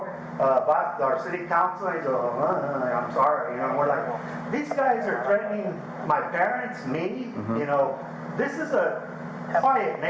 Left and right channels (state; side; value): identical; both; correlation 1.00